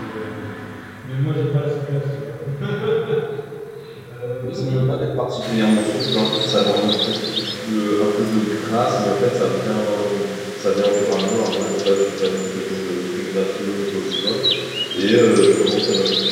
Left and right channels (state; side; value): identical; both; correlation 1.00